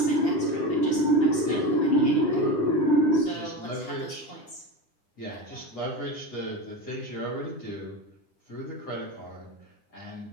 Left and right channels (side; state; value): right; late; 9.9 ms